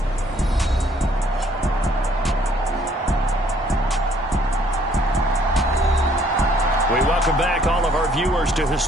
We welcome back all of our viewers to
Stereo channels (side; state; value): both; normal; correlation 0.63